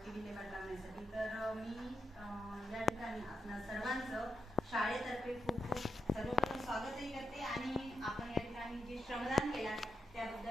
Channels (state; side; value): normal; both; correlation 0.85